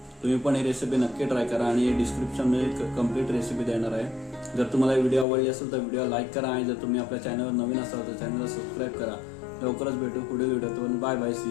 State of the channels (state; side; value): drops out; right; at 5.2 s